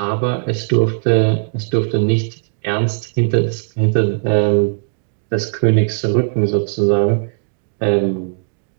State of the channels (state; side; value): silent; left; digital silence